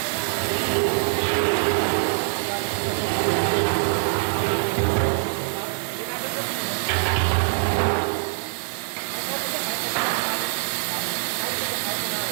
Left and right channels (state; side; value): silent; left; digital silence